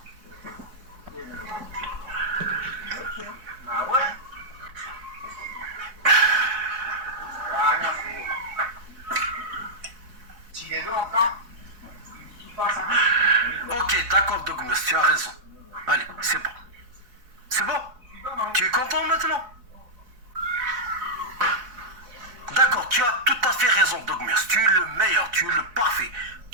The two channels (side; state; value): left; late; 4.6 ms